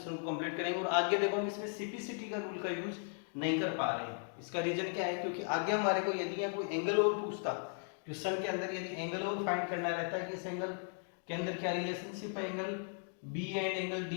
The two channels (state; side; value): silent; right; 53 dB below the other